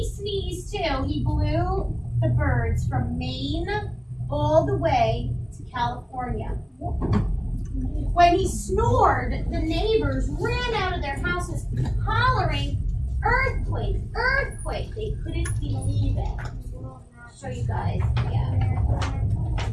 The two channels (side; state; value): both; identical; correlation 1.00